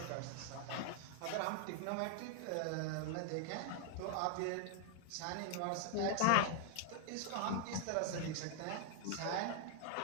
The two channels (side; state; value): both; different; correlation 0.00